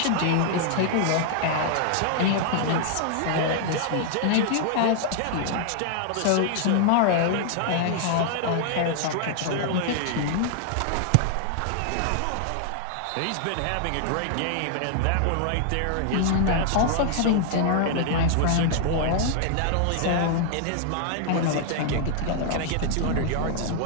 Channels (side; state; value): both; different; correlation 0.00